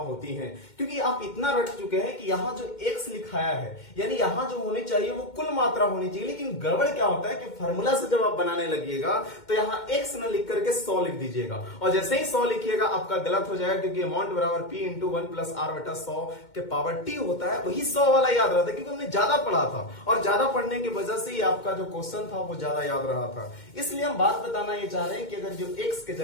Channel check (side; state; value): right; late; 2.2 ms